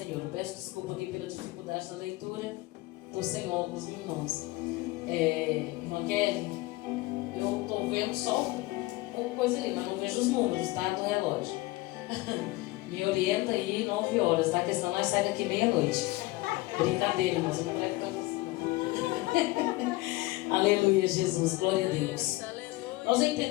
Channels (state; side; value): quieter; right; 20.3 dB